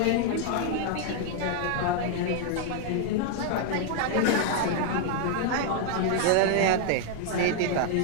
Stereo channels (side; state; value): both; different; correlation 0.00